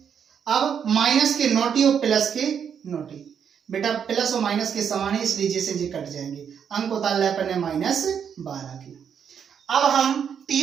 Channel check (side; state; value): left; quieter; 7.7 dB